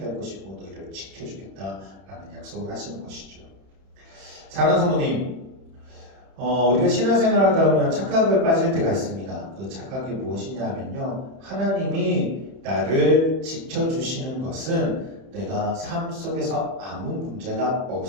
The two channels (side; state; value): left; late; 31 ms